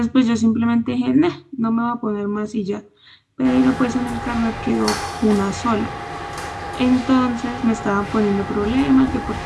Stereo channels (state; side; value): identical; both; correlation 1.00